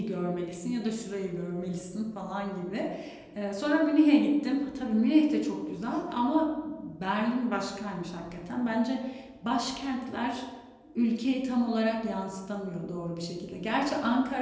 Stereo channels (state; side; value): identical; both; correlation 1.00